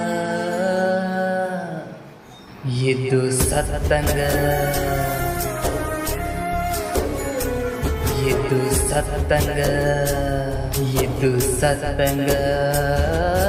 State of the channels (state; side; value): identical; both; correlation 1.00